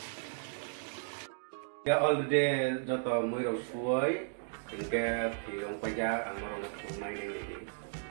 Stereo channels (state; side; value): silent; left; digital silence